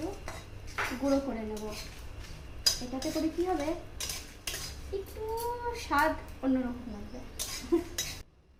গুঁড়ো করে নেব। এটাতে করে কি হবে, একটু স্বাদ অন্যরকম লাগবে।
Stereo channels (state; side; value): identical; both; correlation 1.00